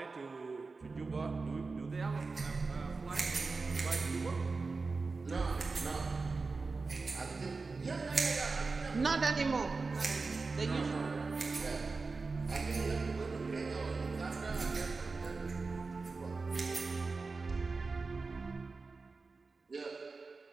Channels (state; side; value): quieter; left; 4.1 dB